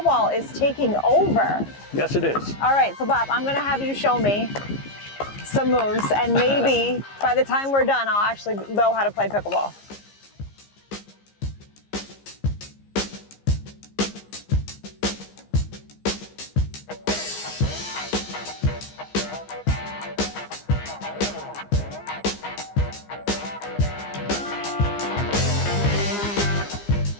is taking over. Yes, it is. All right, so Bob, I'm gonna have you show me some moves, and maybe by the time we're done, I'll actually know how to play pickleball.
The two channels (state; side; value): late; right; 15 ms